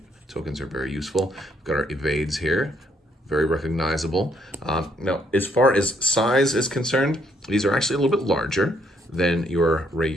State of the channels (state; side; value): normal; both; correlation 0.71